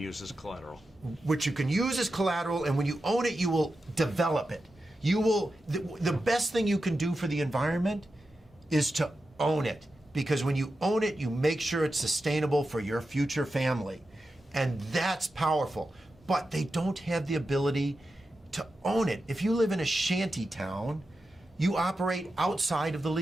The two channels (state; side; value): normal; both; correlation 0.90